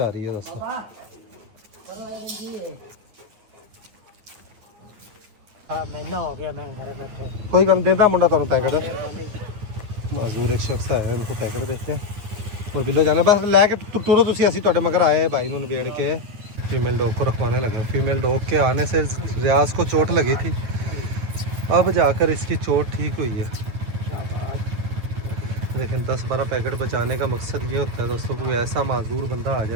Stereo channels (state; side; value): late; left; 9.4 ms